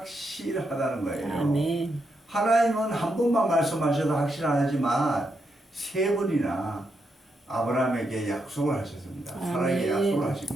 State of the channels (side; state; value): both; normal; correlation 0.82